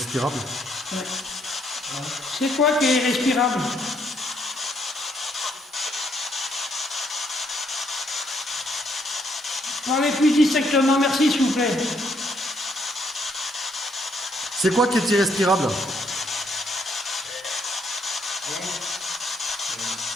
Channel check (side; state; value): both; normal; correlation 0.71